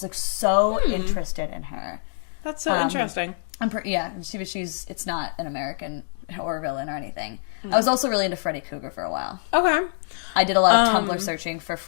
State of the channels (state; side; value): silent; right; digital silence